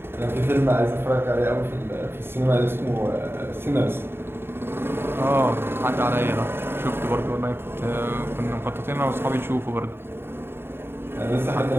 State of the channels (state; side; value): late; left; 0.11 ms